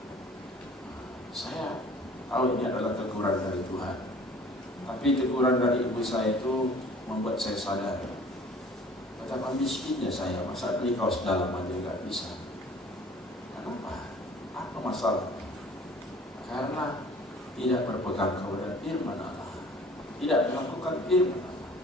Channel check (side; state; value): both; normal; correlation 0.50